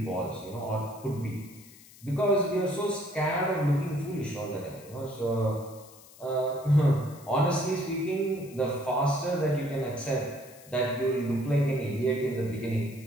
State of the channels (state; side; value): noise; left; hiss, 22 dB below the sound